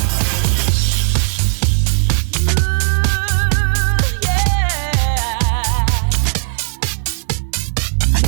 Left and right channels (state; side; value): silent; left; digital silence